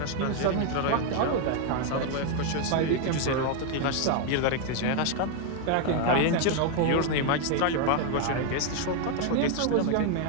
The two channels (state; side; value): different; both; correlation 0.01